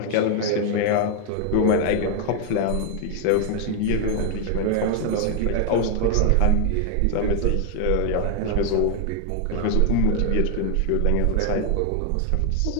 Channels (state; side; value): different; both; correlation 0.01